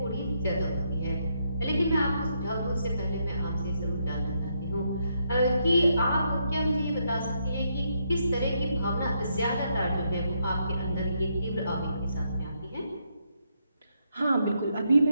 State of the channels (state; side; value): inverted; both; correlation -0.77